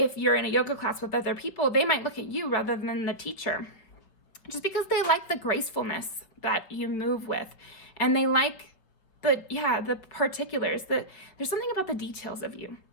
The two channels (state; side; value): late; right; 5.4 ms